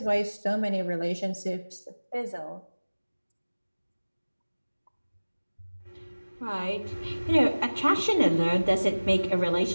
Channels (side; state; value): both; inverted; correlation -1.00